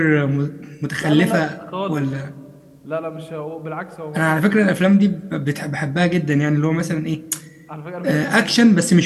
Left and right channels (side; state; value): both; identical; correlation 1.00